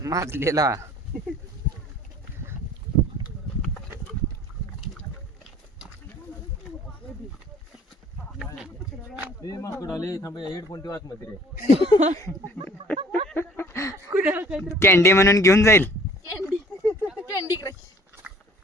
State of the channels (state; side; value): normal; both; correlation 0.53